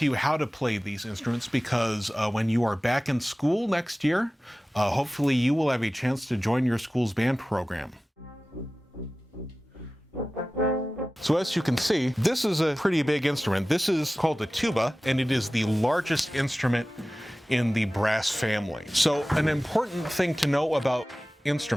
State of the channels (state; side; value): normal; both; correlation 0.96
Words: you how to play these instruments because when you are back in school next year, hopefully you will have a chance to join your school's band program. So as you can see, this is a pretty big instrument. This is called the tuba, and it is the largest instrument in the brass family. So an important thing to know about